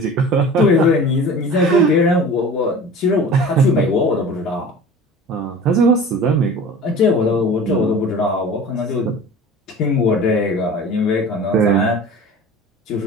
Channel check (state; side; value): normal; both; correlation 0.39